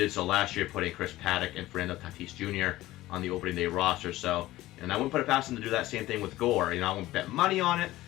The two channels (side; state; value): right; quieter; 16.6 dB